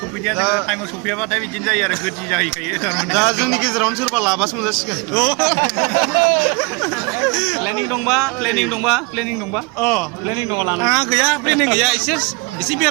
सफैदिया जोङो टाइमाव सफैयाबाथाय बिदिनो जायो आरो गोदि जाहैखायो दा जोंनि गेजेरावनो सोरबा लाबासो मोनजासिगोन प्लेनिं दंबा प्लेनिं दंबा आंहा गैया प्लेनिं गैया एसे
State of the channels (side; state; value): left; quieter; 28.2 dB